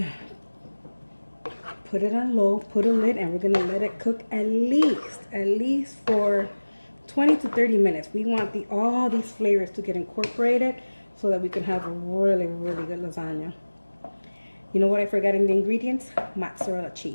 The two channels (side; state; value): both; inverted; correlation -1.00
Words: put it on low, put a lid, and we're gonna let it cook at least for 20 to 30 minutes. We want all these flavors to get incorporated so that we can have a really, really good lasagna. You know what I forgot in the ingredients? Mozzarella